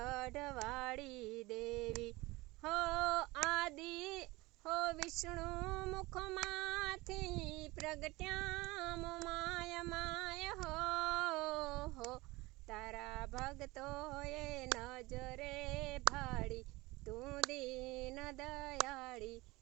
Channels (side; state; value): left; quieter; 21.5 dB